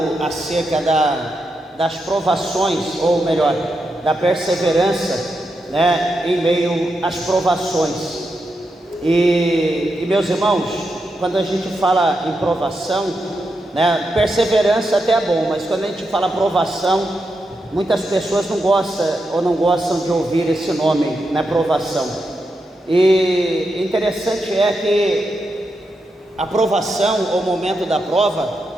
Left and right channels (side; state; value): both; normal; correlation 0.85